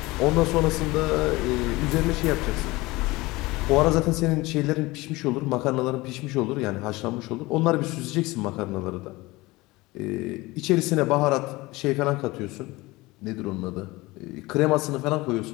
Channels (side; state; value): right; quieter; 21.2 dB